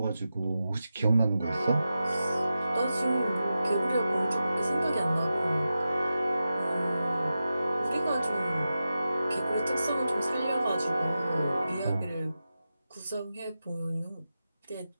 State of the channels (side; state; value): both; inverted; correlation -0.91